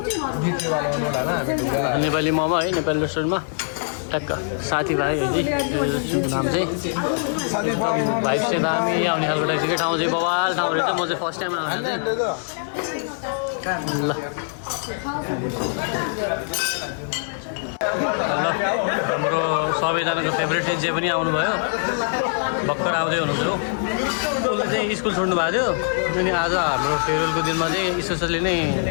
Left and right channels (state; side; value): silent; right; digital silence